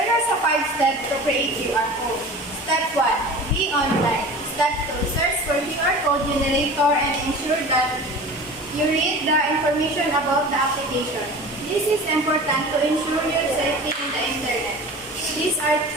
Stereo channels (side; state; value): both; normal; correlation 0.37